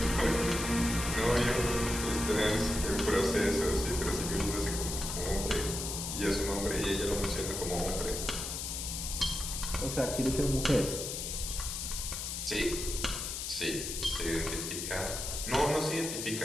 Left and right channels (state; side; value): noise; left; hiss, 4 dB below the sound